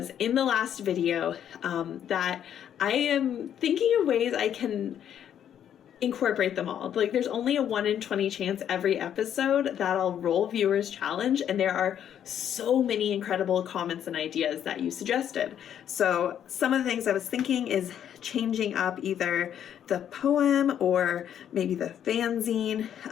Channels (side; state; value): right; quieter; 9.7 dB